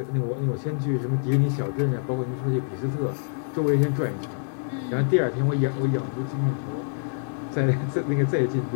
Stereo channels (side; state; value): right; silent; digital silence